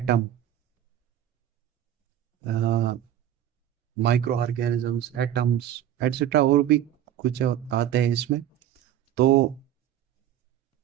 micro organisms, atoms, etcetera, और भी कुछ आते हैं इसमें। तो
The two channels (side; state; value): left; quieter; 11.3 dB